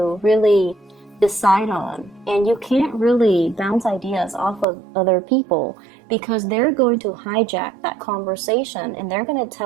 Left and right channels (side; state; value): left; drops out; at 4.7 s